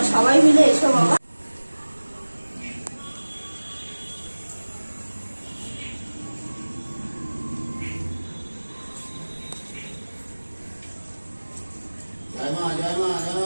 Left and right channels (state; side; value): inverted; both; correlation -1.00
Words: সবাই মিলে এসো বাবা।